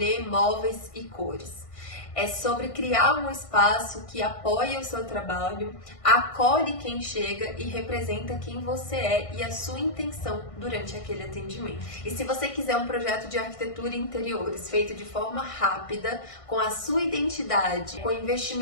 móveis e cores. É sobre criar um espaço que apoia o seu trabalho, acolhe quem chega e representa quem você é e a sua intenção durante aquele atendimento. E se você quiser um projeto de arquitetura e interiores feito de forma rápida, com a sua identidade, com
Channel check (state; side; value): late; right; 1.5 ms